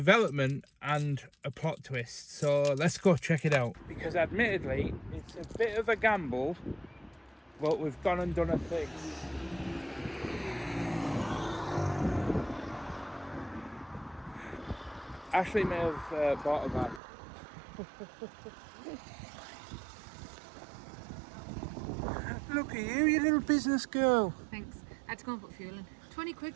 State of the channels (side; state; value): left; drops out; at 17.0 s